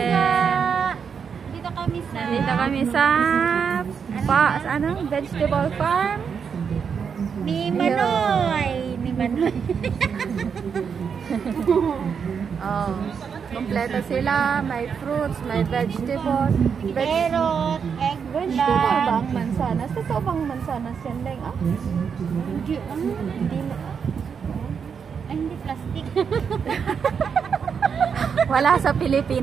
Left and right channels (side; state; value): left; quieter; 6.6 dB